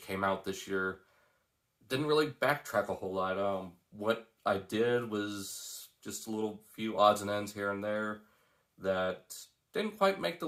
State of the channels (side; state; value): both; identical; correlation 1.00